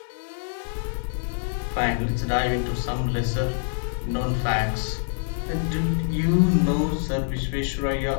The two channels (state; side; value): silent; right; digital silence